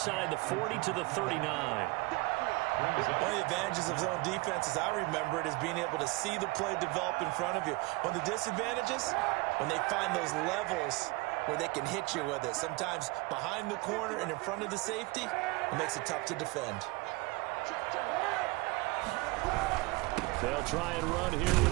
the 40 to the 39. One of the advantages of zone defense, as I remember it, is being able to see the play develop in front of you. One of the disadvantages, when they find those levels where they can hit you with it. Sometimes behind the corner and in front of the safety, it makes it tough to defend. They'll try and run here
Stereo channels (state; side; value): quieter; left; 24.3 dB